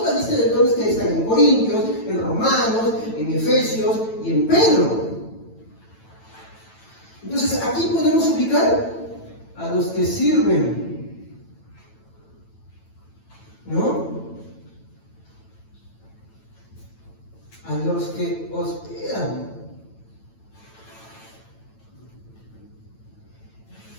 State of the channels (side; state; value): right; late; 9.0 ms